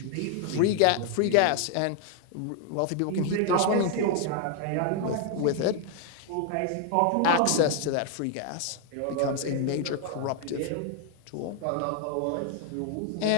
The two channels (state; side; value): different; both; correlation 0.00